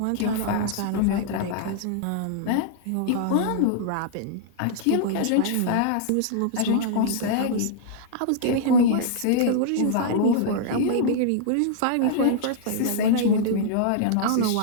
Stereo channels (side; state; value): both; different; correlation -0.01